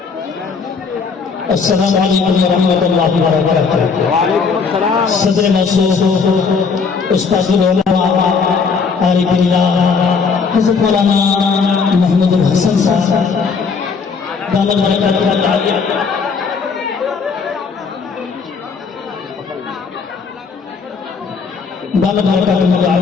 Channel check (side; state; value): right; quieter; 5.2 dB